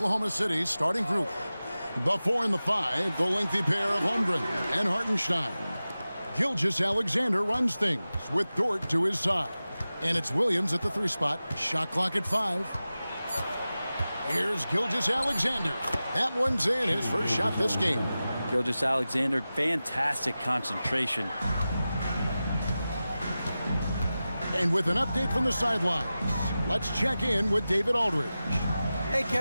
City's starting group. The 4 and the 5, the lengthy pair of Holmgren and Hartenstein. Gilgeous-Alexander runs things with Dort to his side. And it's Williams at the 3 spot. Shot clock at 5. Here's Gilgeous-Alexander. That one's in, his first shot this game. Gilgeous-Alexander, fantastic concentration. And with an update from the sidelines, let's check in with David Aldridge. Hey,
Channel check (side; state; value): both; inverted; correlation -0.95